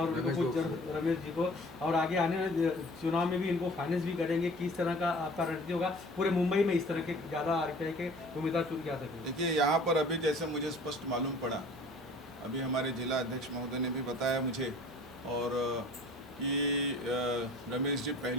उनको कुछ रमेश जी को, और आगे आने वाले चुनाव में भी इनको फाइनेंस भी करेंगे। किस तरह का आपका रणनीति होगा पूरे मुंबई में इस तरह के ज़्यादा RPI के उम्मीदवार चुन के आ सकें? देखिए, यहाँ पर अभी जैसे मुझे स्पष्ट मालूम पड़ा, अभी हमारे जिला अध्यक्ष महोदय ने भी बताया मुझे, और कि रमेश जी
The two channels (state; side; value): noise; right; hum, 29 dB below the sound